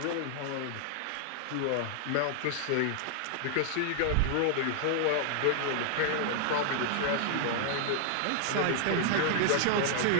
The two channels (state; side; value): different; both; correlation -0.01